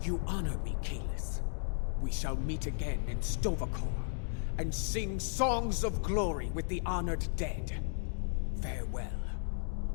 You honor me, Kalis. We shall meet again in Stovokor, and sing songs of glory with the honored dead. Farewell.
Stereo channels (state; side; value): silent; right; digital silence